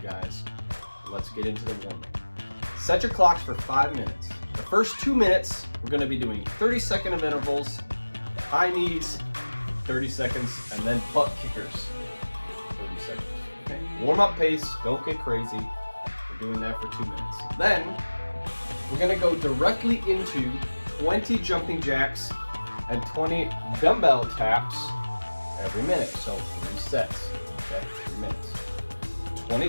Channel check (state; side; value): inverted; both; correlation -1.00